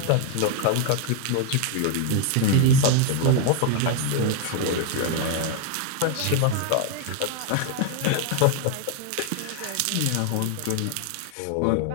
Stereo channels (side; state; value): both; different; correlation 0.01